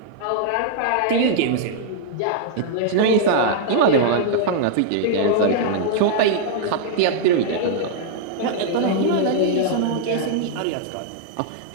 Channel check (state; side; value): different; both; correlation -0.01